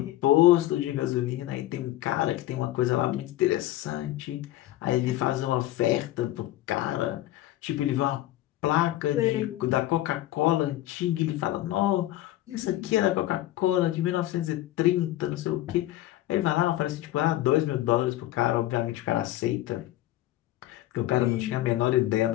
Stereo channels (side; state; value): right; quieter; 14.9 dB